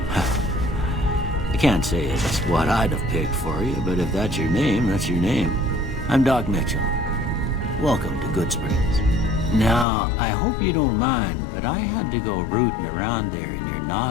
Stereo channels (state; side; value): drops out; right; at 9.9 s